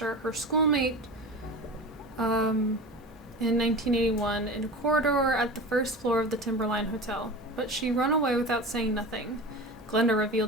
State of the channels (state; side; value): normal; both; correlation 0.31